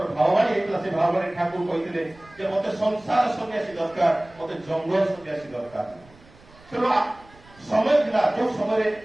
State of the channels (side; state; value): right; noise; rumble, 26 dB below the sound